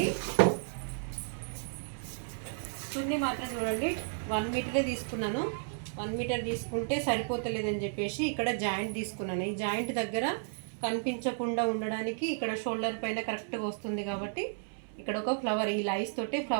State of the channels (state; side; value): silent; left; 56 dB below the other